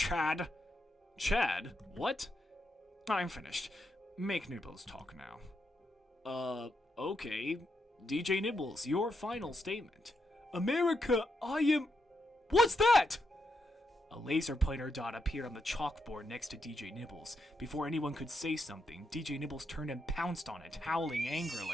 Chad? What? I'm finished. Make Nibbles talk now. Okay. DJ Nibbles, your final statement. America, I am... What's that? A laser pointer dot appeared on the chalkboard next to DJ Nibbles. Before anyone could say something, DJ Nibbles turned and pounced on it, howling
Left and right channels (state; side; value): normal; both; correlation 0.82